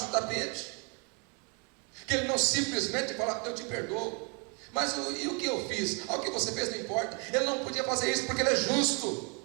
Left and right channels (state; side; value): quieter; left; 34.3 dB